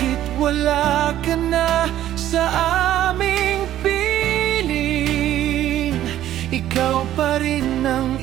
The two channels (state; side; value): quieter; left; 12.6 dB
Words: wala ka na sa aming piling, ikaw pa rin ang